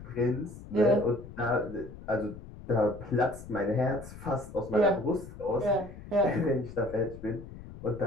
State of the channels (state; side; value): noise; left; rumble, 15 dB below the sound